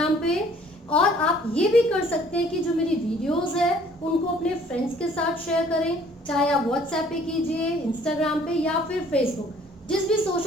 पे। और आप ये भी कर सकते हैं कि जो मेरी वीडियोस है उनको अपने फ्रेंड्स के साथ शेयर करें, चाहे आप व्हाट्सएप पे कीजिए, इंस्टाग्राम पे या फिर फेसबुक, जिस भी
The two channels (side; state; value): both; normal; correlation 0.57